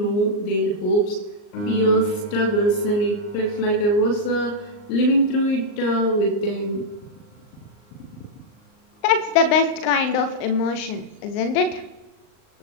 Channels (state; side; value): late; right; 39 ms